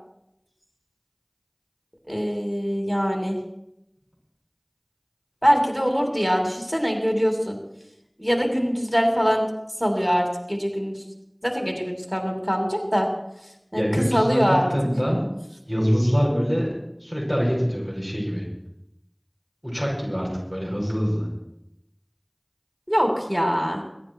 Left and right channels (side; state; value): both; identical; correlation 1.00